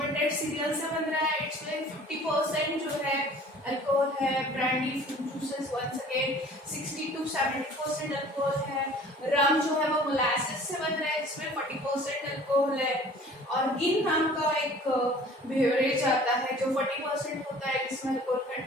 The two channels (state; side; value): normal; both; correlation 0.48